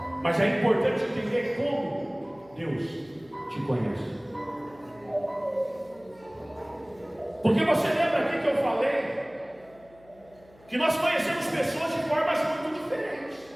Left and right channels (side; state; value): left; noise; hum, 27 dB below the sound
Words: Mas é importante entender como Deus te conhece. Porque você lembra aqui que eu falei que nós conhecemos pessoas de formas muito diferentes.